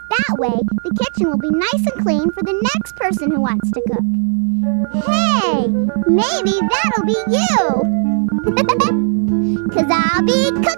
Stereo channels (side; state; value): left; silent; digital silence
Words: That way, the kitchen will be nice and clean for the next person who wants to cook. Hey, maybe that'll be you! 'Cause I'll be